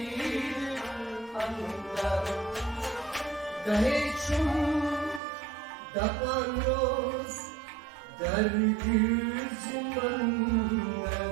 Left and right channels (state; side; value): drops out; left; at 5.2 s